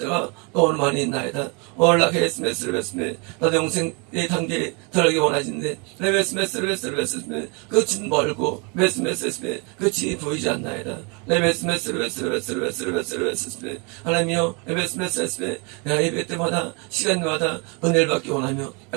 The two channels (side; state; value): left; quieter; 32.4 dB